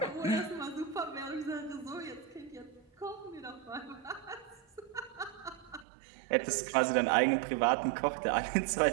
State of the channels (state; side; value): drops out; left; at 5.9 s